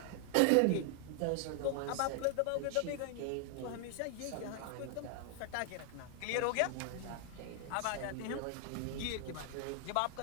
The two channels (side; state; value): both; different; correlation 0.00